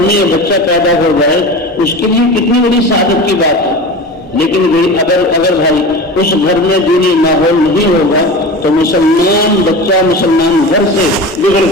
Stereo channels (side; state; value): both; normal; correlation 0.31